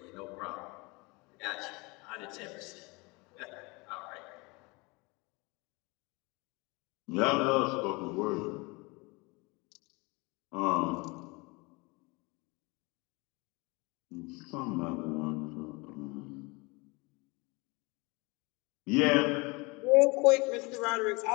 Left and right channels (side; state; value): right; quieter; 26.6 dB